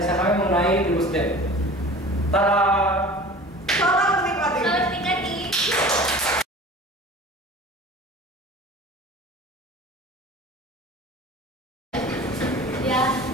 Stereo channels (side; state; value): both; normal; correlation 0.41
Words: kami mengenai DeGusDev. Tada! Selamat menikmati. Selamat menikmati. Ya,